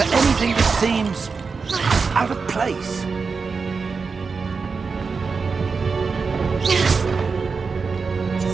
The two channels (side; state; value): left; quieter; 4.9 dB